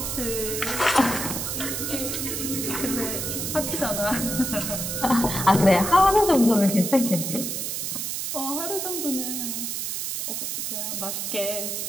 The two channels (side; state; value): right; noise; hiss, 3 dB below the sound